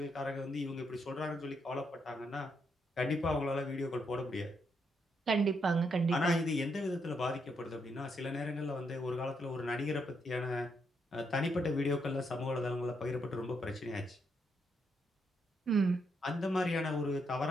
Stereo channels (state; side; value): normal; both; correlation 0.78